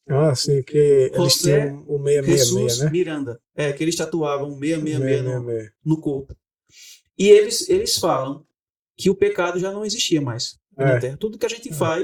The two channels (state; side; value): identical; both; correlation 1.00